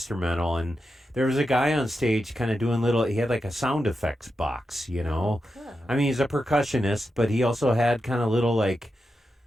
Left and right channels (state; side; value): normal; both; correlation 0.89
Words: And there was a guy on stage kind of doing he had like a sound effects box, Oh, cool. I mean, he's a percussionist, but he also had kind of little like